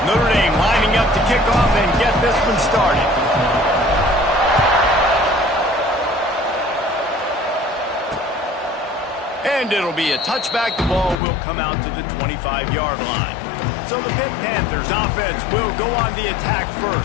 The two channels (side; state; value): right; drops out; at 11.2 s